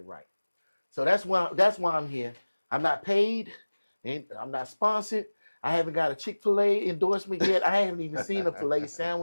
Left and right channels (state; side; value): inverted; both; correlation -1.00